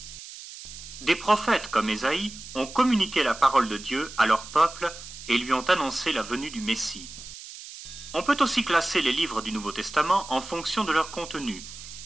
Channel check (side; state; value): right; noise; hiss, 13 dB below the sound